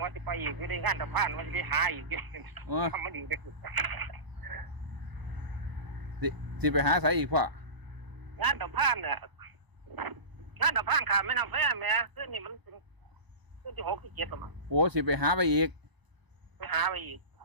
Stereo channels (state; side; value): late; left; 1.0 ms